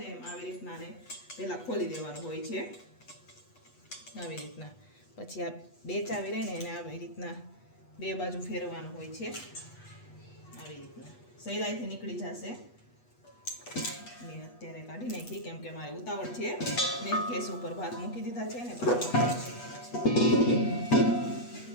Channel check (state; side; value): late; right; 8.2 ms